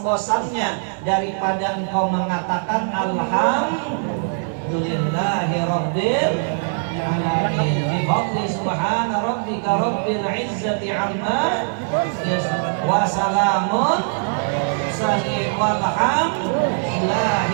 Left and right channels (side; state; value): left; silent; digital silence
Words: daripada engkau mengatakan alhamdulillahi rabbil alamin bi fadli subhana rabbika rabbil izzati amma wa salamun